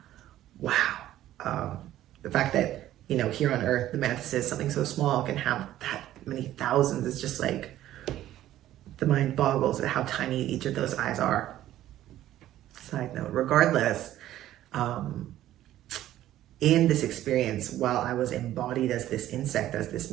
The fact that, here on Earth, the mantises, something so small, can have that many thousands is just like, the mind boggles at how tiny each of those eyes are. Side note, regardless, in this experience, while I was embodied as this insect, as this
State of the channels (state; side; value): quieter; left; 13.4 dB